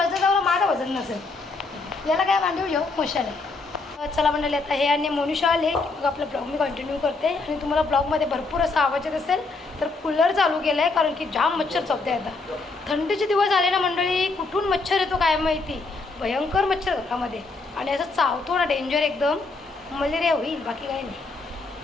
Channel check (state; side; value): quieter; right; 3.8 dB